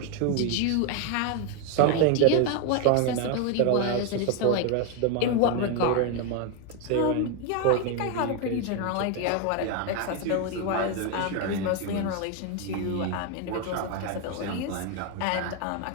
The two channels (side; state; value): both; different; correlation 0.01